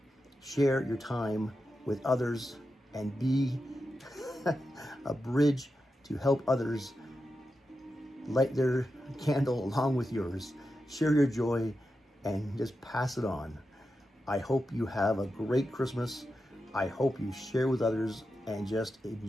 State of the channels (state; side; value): normal; both; correlation 0.89